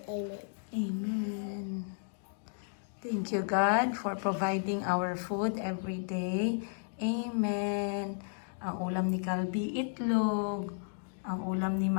Amen. Thank you, God, for providing our food every day. Amen. Ang ulam ni Calby, itlog. Ang ulam ni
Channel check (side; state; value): right; silent; digital silence